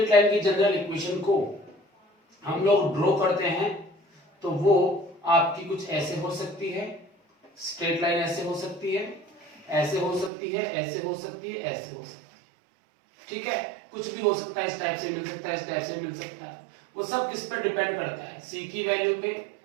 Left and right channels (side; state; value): left; drops out; at 10.3 s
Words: लाइन की जनरल इक्वेशन को हम लोग ड्रॉ करते हैं तो वो आपकी कुछ ऐसे हो सकती है, स्ट्रेट लाइन ऐसे हो सकती है, ऐसे हो सकती है, ऐसे हो सकती है, ऐसे हो सकती है। ठीक है, कुछ भी हो सकता है, इस टाइप से मिल सकता है, इस टाइप से मिल सकता है। वो सब किस पर डिपेंड करता है, c की वैल्यू पे,